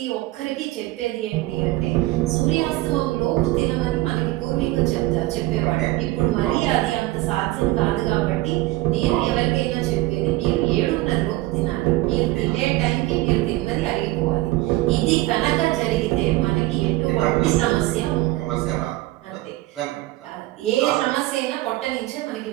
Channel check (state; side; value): quieter; left; 18.6 dB